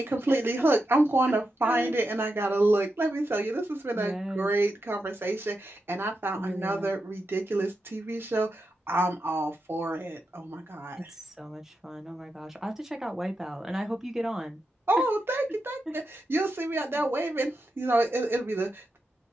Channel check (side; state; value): both; normal; correlation 0.87